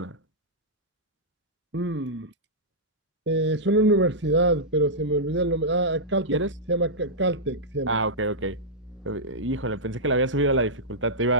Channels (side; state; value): both; normal; correlation -0.11